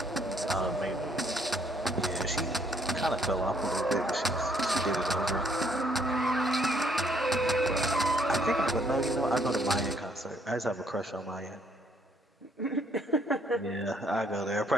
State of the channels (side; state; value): both; normal; correlation 0.67